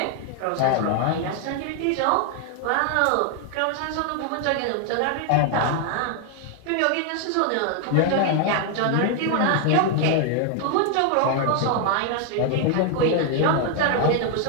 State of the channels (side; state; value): both; different; correlation 0.00